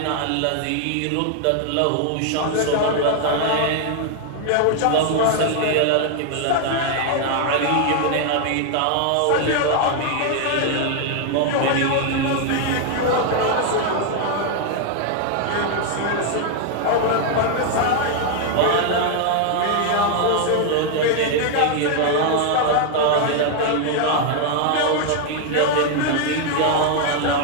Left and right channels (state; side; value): different; both; correlation 0.00